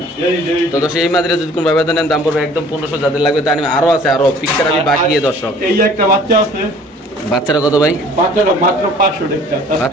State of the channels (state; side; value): normal; both; correlation 0.52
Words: এই তো দর্শক এই মাদিরা যদি কোন ভাইবা দেন দাম পড়বে একদম 1500 যাদের লাগবে তা আরো আছে আরো পিকচার আমি বাকি দর্শক এই একটা বাচ্চা আছে বাচ্চারা কত ভাই বাচ্চাটা মাত্র 500 টাকা